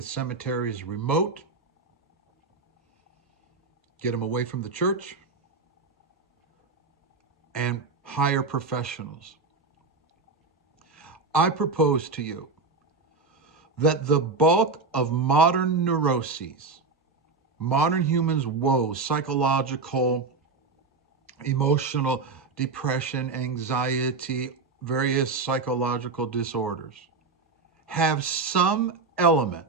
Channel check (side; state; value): left; quieter; 4.1 dB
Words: cemeteries remote. Get them away from the church. And hire professionals. I propose to you that the bulk of modern neuroses, modern humans' woes, psychological, emotional, depression, anxiety, various psychological disorders, have some element